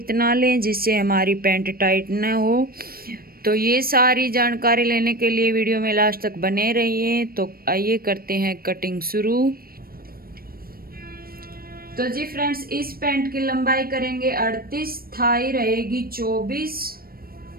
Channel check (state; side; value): late; left; 0.43 ms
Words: लें जिससे हमारी पैंट टाइट न हो। तो ये सारी जानकारी लेने के लिए वीडियो में लास्ट तक बने रहिए। तो आइए करते हैं कटिंग शुरू। तो जी फ्रेंड्स, इस पैंट की लंबाई करेंगे 38, थाई रहेगी 24